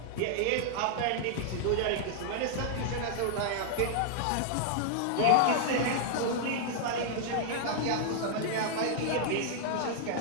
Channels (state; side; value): different; both; correlation 0.00